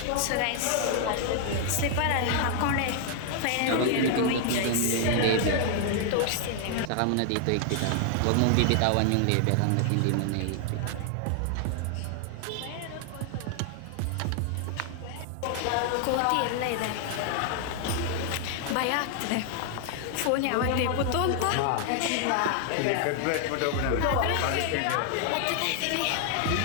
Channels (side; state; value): both; different; correlation 0.00